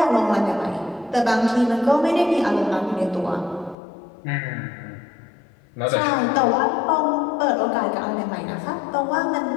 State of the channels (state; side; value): drops out; right; at 3.8 s